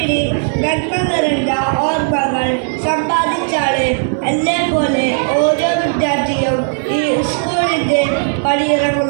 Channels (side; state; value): left; silent; digital silence